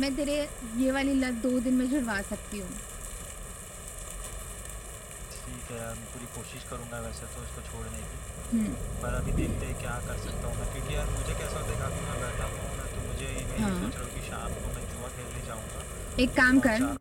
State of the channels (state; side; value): identical; both; correlation 1.00